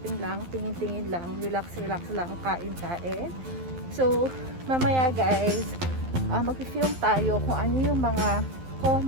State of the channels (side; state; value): left; late; 12 ms